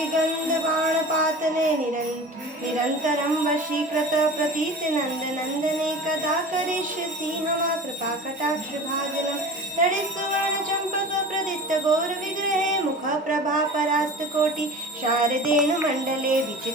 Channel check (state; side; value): normal; both; correlation 0.36